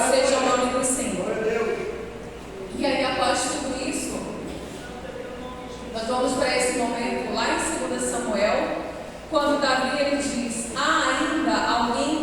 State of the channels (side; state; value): both; identical; correlation 1.00